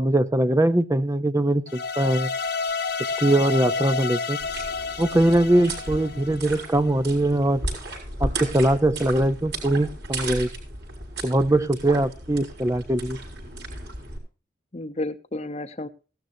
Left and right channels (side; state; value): both; normal; correlation 0.77